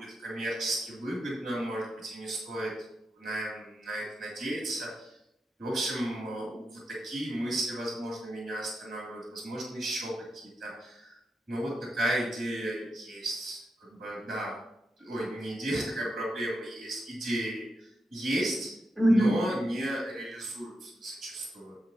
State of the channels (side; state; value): both; normal; correlation 0.86